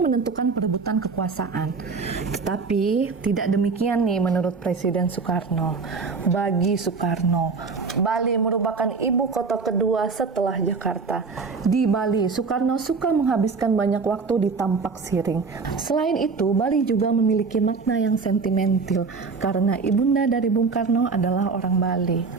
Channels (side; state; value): left; quieter; 4.7 dB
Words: menentukan perebutan kekuasaan. Tetapi tidak demikian nih menurut Presiden Soekarno. Bagi Soekarno, Bali merupakan ibu kota kedua setelah Jakarta. Di Bali, Soekarno suka menghabiskan banyak waktu di Tampak Siring. Selain itu, Bali juga memiliki makna yang sentimental karena ibunda dari Bung Karno adalah orang Bali.